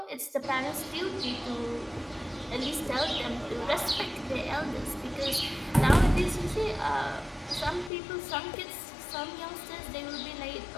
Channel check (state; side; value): drops out; right; at 7.9 s